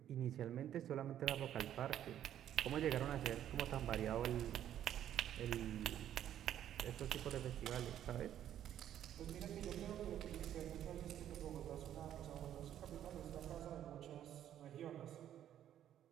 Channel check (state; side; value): quieter; left; 10.9 dB